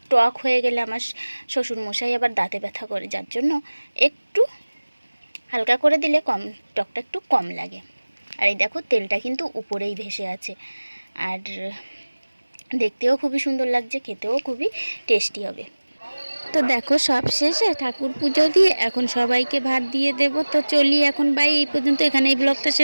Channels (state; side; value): inverted; both; correlation -1.00